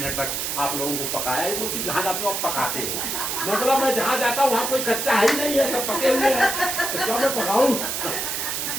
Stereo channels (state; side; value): noise; right; hiss, 2 dB below the sound